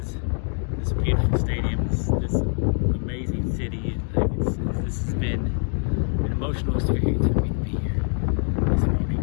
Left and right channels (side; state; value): right; silent; 56 dB below the other